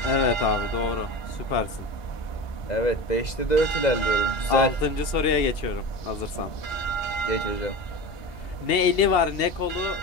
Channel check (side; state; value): right; late; 2.8 ms